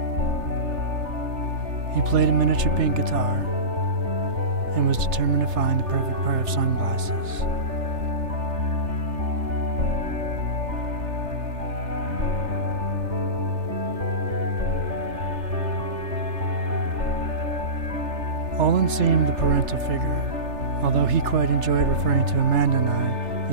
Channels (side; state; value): left; late; 3.3 ms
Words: He played a miniature pink guitar and was determined to find the perfect pair of sunglasses. Olan seemed the parental figure, although he quite enjoyed referring to Amanda and I